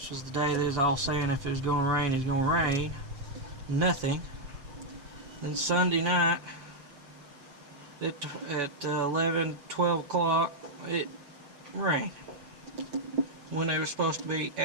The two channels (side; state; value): left; late; 7.1 ms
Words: was the day they was all saying if it was going to rain, it's going to rain. Nothing. Then Sunday night at 11, 12 o'clock, it rained when there was supposed to be